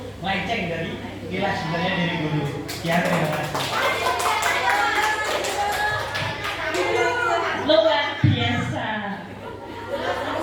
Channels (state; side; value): identical; both; correlation 1.00